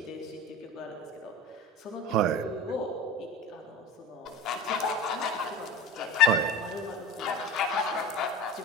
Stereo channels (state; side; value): normal; both; correlation 0.35